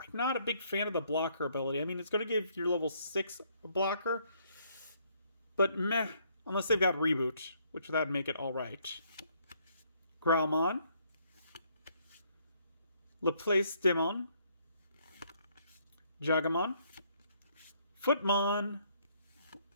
not a big fan of the blocker ability. I mean, it's going to give your level 6 a blocker, but meh, unless they've got Reboot, which that'd make it alright. Growlmon, Laplace Demon, Jagamon, Footmon,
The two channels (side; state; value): both; inverted; correlation -0.68